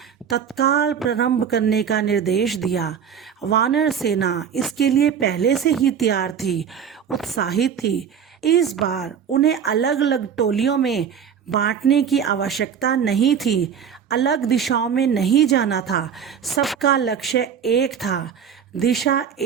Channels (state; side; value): quieter; left; 7.7 dB